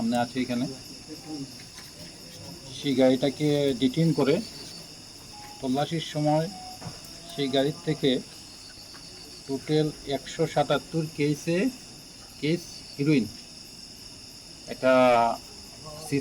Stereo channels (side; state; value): both; identical; correlation 1.00